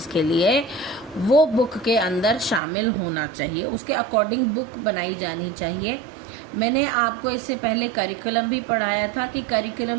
के लिए, वो बुक के अंदर शामिल होना चाहिए, उसके अकॉर्डिंग बुक बनाई जानी चाहिए। मैंने आपको इससे पहले करिकुलम भी पढ़ाया था कि करिकुलम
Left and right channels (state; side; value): drops out; left; at 2.6 s